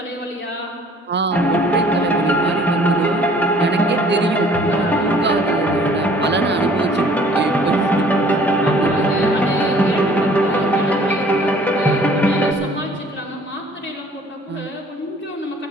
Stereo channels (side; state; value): both; normal; correlation 0.55